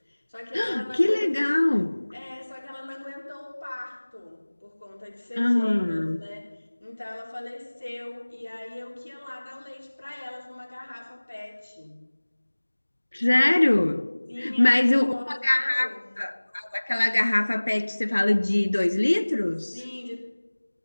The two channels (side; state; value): both; inverted; correlation -1.00